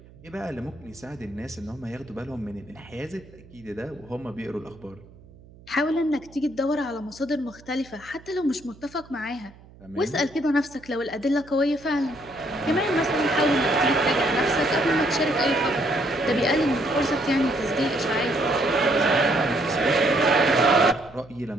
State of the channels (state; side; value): noise; right; hum, 23 dB below the sound